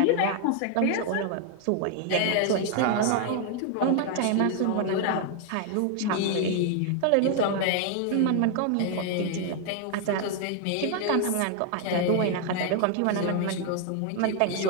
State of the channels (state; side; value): different; both; correlation 0.00